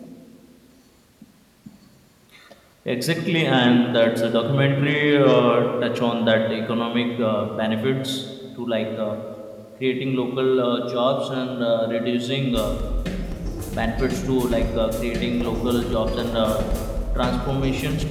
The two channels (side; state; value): both; identical; correlation 1.00